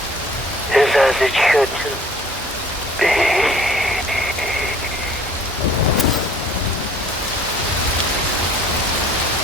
is as it should be.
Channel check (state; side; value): normal; both; correlation 0.53